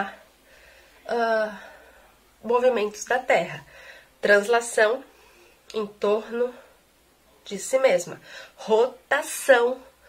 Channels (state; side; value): identical; both; correlation 1.00